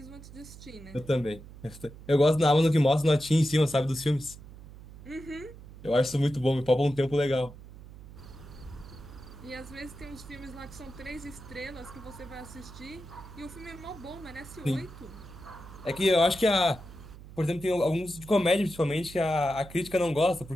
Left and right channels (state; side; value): noise; right; hum, 17 dB below the sound